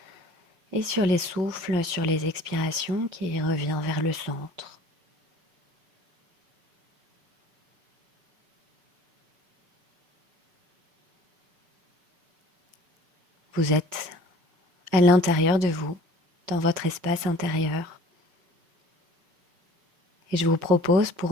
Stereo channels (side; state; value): left; late; 5.7 ms